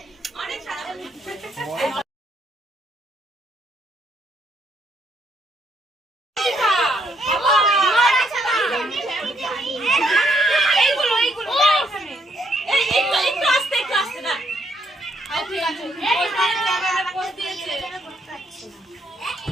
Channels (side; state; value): both; normal; correlation 0.73